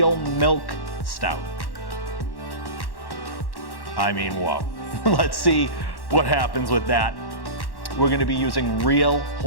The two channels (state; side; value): late; right; 1.1 ms